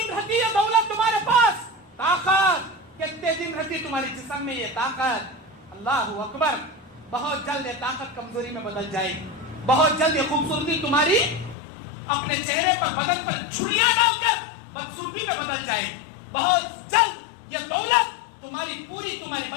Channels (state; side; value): drops out; right; at 11.6 s